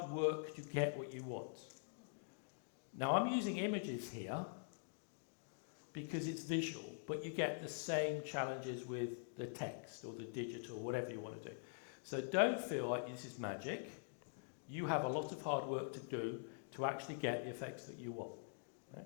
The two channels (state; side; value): silent; right; digital silence